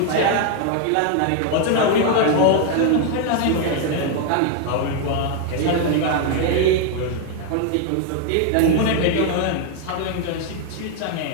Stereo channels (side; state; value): both; different; correlation 0.00